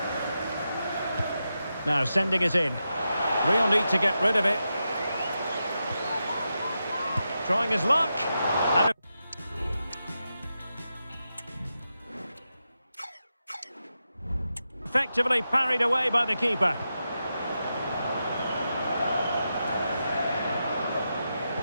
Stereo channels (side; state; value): both; inverted; correlation -0.88